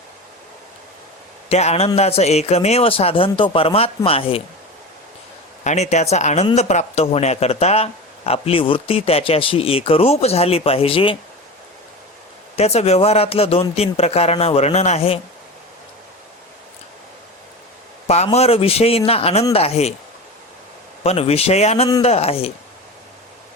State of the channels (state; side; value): normal; both; correlation 0.28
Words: त्या आनंदाचं एकमेव साधन तो परमात्मा आहे. आणि त्याचा आनंद प्राप्त होण्याकरता आपली वृत्ती त्याच्याशी एकरूप झाली पाहिजे. त्याचं व्यवहारातलं 2-3 प्रकारांना वर्णन आहे. पामर विषयींना आनंद आहे, पण विषयानंद आहे,